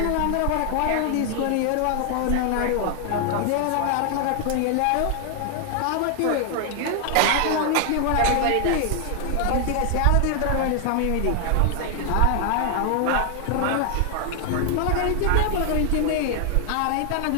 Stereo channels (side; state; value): both; different; correlation 0.00